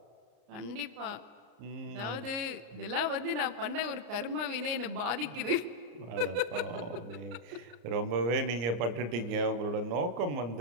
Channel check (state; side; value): late; left; 33 ms